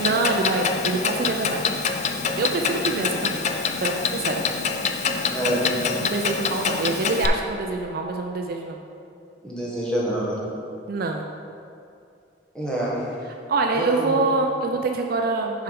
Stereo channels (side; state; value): both; normal; correlation 0.12